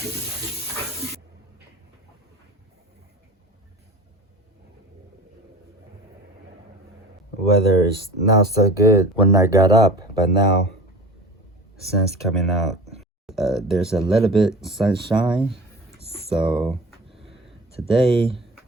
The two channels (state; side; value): normal; both; correlation 0.36